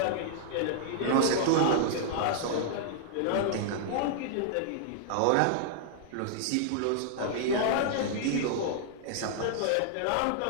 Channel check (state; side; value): different; both; correlation -0.01